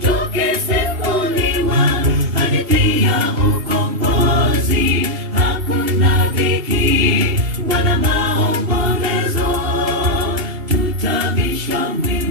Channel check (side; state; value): left; late; 2.8 ms